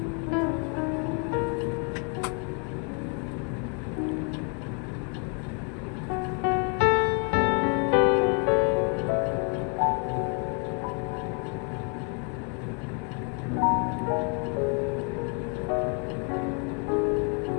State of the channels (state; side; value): quieter; right; 38.3 dB